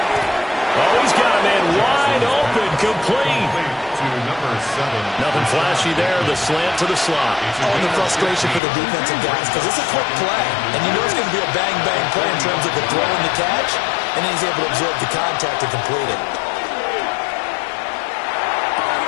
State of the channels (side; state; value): right; drops out; at 8.6 s